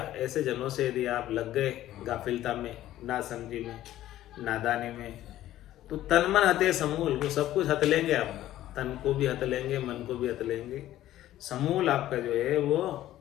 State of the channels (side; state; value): right; quieter; 13.7 dB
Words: जनों से यदि आप लग गए गाफिलता में, ना समझी में, नादानी में, तो तन मन हते समूल, वो सब कुछ हत लेंगे आपका, तन को भी हत लेंगे, मन को भी हत लेंगे, समूल आपका जो है वो